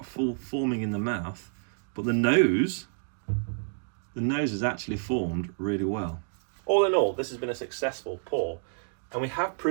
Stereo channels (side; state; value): left; silent; digital silence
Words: full forming in the mouth, but the nose is actually formed really well. All in all, this has been a successful pour, and we have